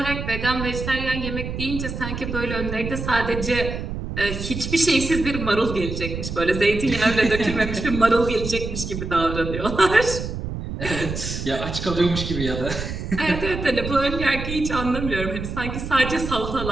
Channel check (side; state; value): right; noise; rumble, 6 dB below the sound